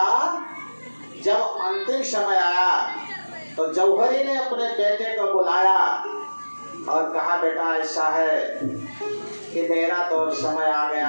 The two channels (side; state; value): both; inverted; correlation -1.00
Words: जब अंतिम समय आया तो जौहरी ने अपने बेटे को बुलाया और कहा, बेटा ऐसा है कि मेरा तो समय आ